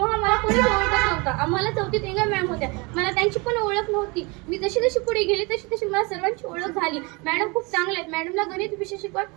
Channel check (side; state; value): left; quieter; 27.9 dB